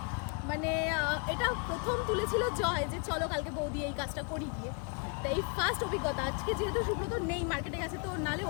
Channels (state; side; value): quieter; right; 35.9 dB